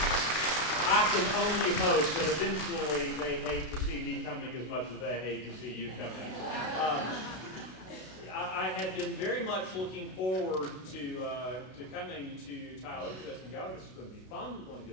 I can only hope that eventually they hate to see me coming as much as they hate to see you coming. I had been very much looking forward to coming to Tyler just and go, this is going to be fun. We're going to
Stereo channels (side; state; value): right; late; 32 ms